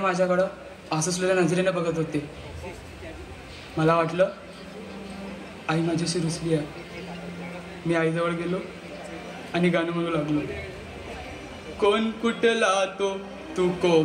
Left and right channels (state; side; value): identical; both; correlation 1.00